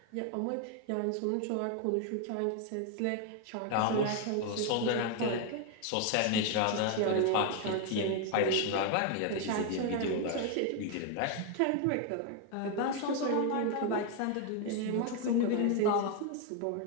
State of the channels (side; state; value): both; different; correlation 0.01